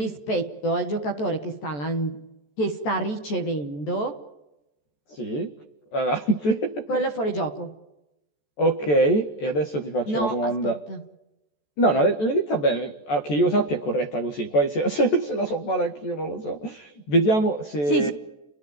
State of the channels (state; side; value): late; right; 14 ms